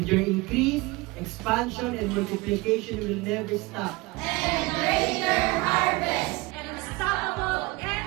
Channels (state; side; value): quieter; left; 22.5 dB